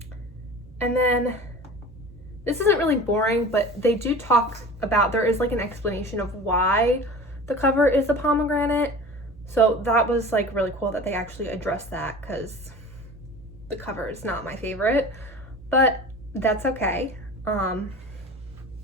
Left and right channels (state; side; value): normal; both; correlation 0.37